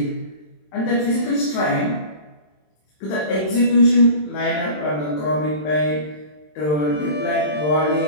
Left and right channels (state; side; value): late; right; 27 ms